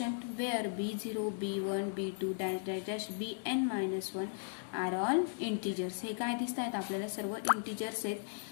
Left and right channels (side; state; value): right; silent; digital silence